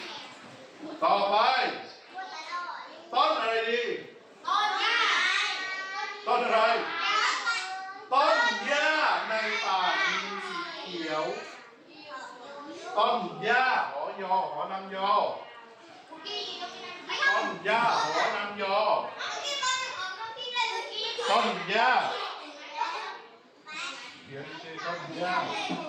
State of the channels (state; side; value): identical; both; correlation 1.00